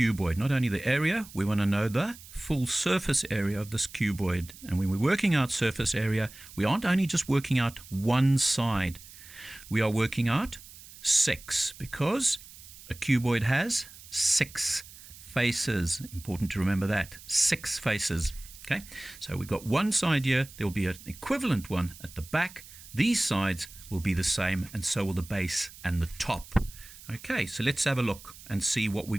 Not only the area, we want to know the full surface area of this cuboid. And when we're working out surface area, we aren't only just working out one side. We are working out 6, because a cuboid has 6 faces. Important to remember that. 6 faces. Okay, so we've got one side here. There will be an equivalent one at the back. These sides will be the same, and so will the base and the top. Okay, so let's have a look and see what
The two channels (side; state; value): right; noise; hiss, 18 dB below the sound